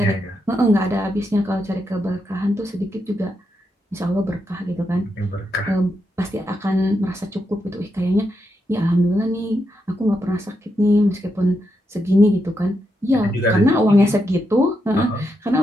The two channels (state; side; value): normal; both; correlation 0.83